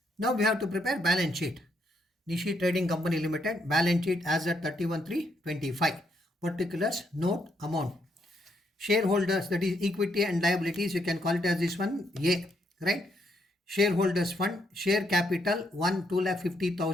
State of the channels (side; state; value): both; normal; correlation 0.75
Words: Now we have to prepare balance sheet. Nishi Trading Company Limited balance sheet as at 31/3/25. Particulars, note, amount. Shareholders, that is equity and liabilities, you can call it as this one A, right? Shareholders fund, share capital